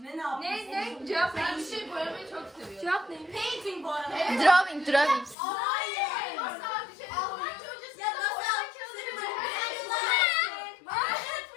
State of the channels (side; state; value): right; drops out; at 5.4 s